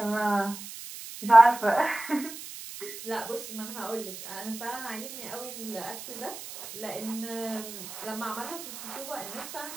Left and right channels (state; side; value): noise; right; hiss, 11 dB below the sound